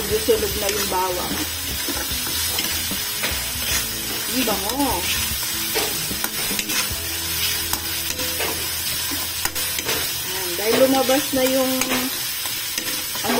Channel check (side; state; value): both; identical; correlation 1.00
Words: sunog na yung bawang. Ang bango. Dahil lumabas na yung